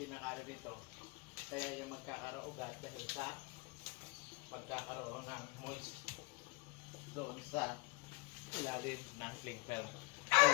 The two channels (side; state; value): right; quieter; 26.5 dB